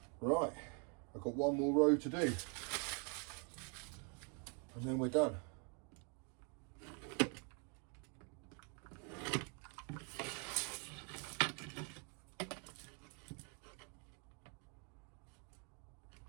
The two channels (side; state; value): left; quieter; 37.6 dB